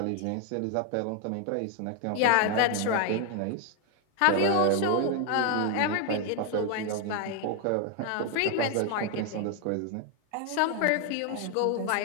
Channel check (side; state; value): both; different; correlation 0.00